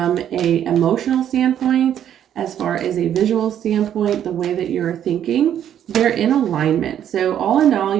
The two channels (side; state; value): left; quieter; 10.1 dB